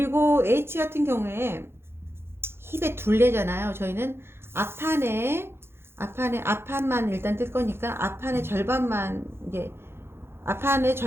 H 같은 경우에 힙의 둘레잖아요. 저희는 앞판만 일단 뜰 거니까 앞판의 절반만 이제 앞판의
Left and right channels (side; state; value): left; late; 0.12 ms